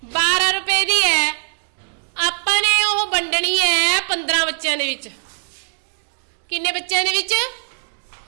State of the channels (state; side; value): silent; left; digital silence